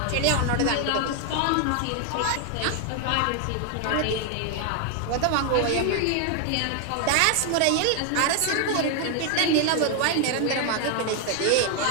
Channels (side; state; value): both; different; correlation 0.00